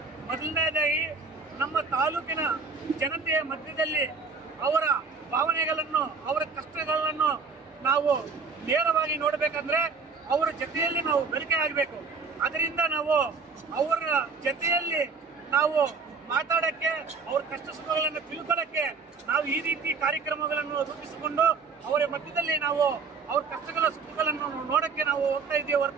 ಮೊದಲನೇದಾಗಿ ನಮ್ಮ ತಾಲೂಕಿನ ಜನತೆಯ ಮಧ್ಯದಲ್ಲಿ ಅವರ ಭಾವನೆಗಳನ್ನು, ಅವರ ಕಷ್ಟಗಳನ್ನು ನಾವು ನೇರವಾಗಿ ನೋಡಬೇಕಂದ್ರೆ ಅವರ ಜೊತೆಯಲ್ಲಿ ನಾವು ಬೆಳಕೆ ಆಗಬೇಕು. ಅದರಿಂದ ನಾವು ಅವರ ಜೊತೆಯಲ್ಲಿ ನಾವು ಮಾತಾಡಕ್ಕೆ, ಅವ್ರ ಕಷ್ಟ ಸುಖಗಳನ್ನು ತಿಳ್ಕೊಳ್ಳಕ್ಕೆ ನಾವು ಈ ರೀತಿ ಕಾರ್ಯಕ್ರಮಗಳನ್ನು ರೂಪಿಸಿಕೊಂಡು ಅವರ ಮಧ್ಯದಲ್ಲಿ ನಾವು ಅವ್ರ ಕಷ್ಟಗಳ ಸುಖಗಳನ್ನು ನೋಡಕ್ಕೆ ನಾವು ಹೋಗ್ತಾ ಇದ್ದೀವಿ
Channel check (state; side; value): quieter; left; 4.8 dB